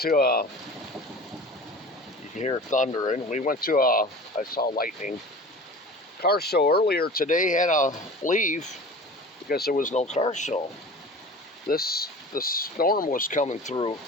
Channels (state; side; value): normal; both; correlation 0.38